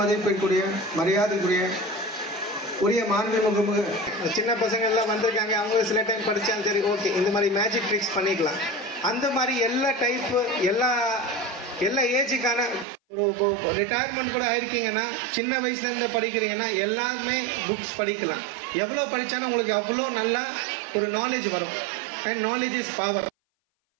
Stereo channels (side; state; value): left; drops out; at 12.9 s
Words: மரியாதைக்குரிய உரிய மாண்புமிகு சின்ன பசங்க எல்லாம் வந்திருக்காங்க. அவங்க சில டைம் படித்தாலும் சரி, ஓகே, இந்த மாதிரி மேஜிக் ட்ரிக்ஸ் பண்ணிக்கலாம். அந்த மாதிரி எல்லா டைப்பு எல்லா ஏஜுக்கான ஒரு ரிட்டையர்மெண்ட் கூட ஆயிருக்கீங்கன்னா, சின்ன வயசுலேருந்து படிக்கிறீங்கன்னா எல்லாருமே புக்ஸ் படிக்கலாம். எவ்வளோ படித்தாலும் உங்களுக்கு அவ்வளோ நல்லா ஒரு நாலேஜ் வரும். And knowledge is power.